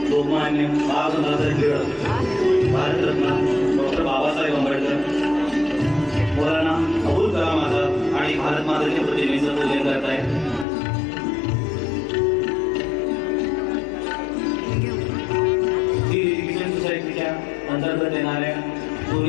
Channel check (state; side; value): drops out; right; at 10.7 s